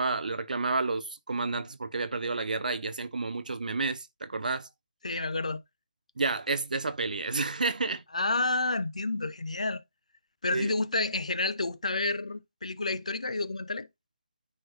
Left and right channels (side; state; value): both; inverted; correlation -0.62